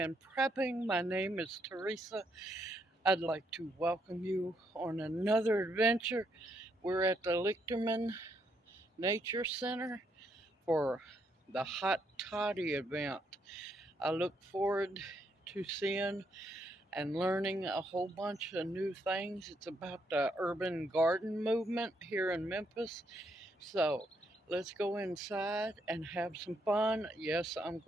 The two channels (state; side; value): normal; both; correlation 0.75